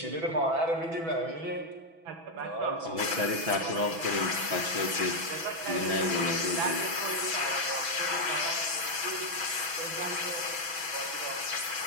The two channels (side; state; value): left; late; 6.1 ms